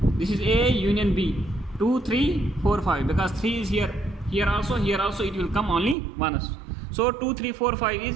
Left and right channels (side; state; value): left; drops out; at 6.0 s